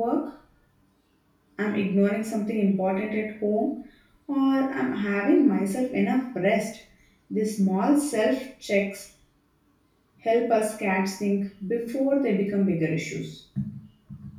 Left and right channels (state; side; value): identical; both; correlation 1.00